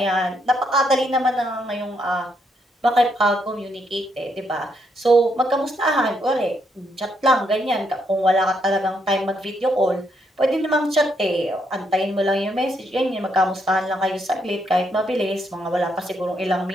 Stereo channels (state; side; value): normal; both; correlation 0.76